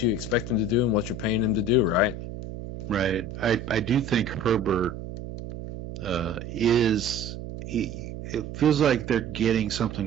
you expect him to do and what you're paying him to do, right? Right. I do think Herbert it feels like they're getting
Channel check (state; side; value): noise; right; hum, 9 dB below the sound